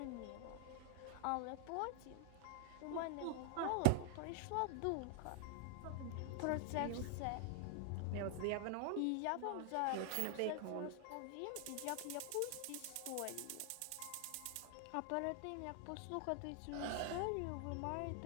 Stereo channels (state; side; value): different; both; correlation 0.00